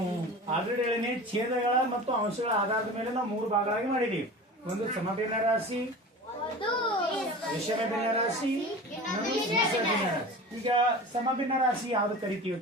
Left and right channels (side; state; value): both; normal; correlation 0.35